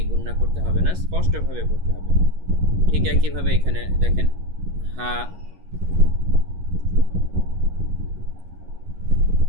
গুণনা করতে হবে না, স্পষ্টভাবে পড়তে হবে। ঠিক একইভাবে এখানে দেখেন, হা,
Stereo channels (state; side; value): late; left; 11 ms